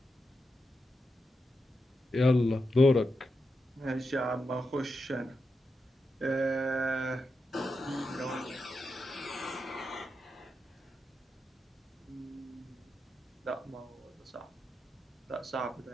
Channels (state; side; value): normal; both; correlation 0.87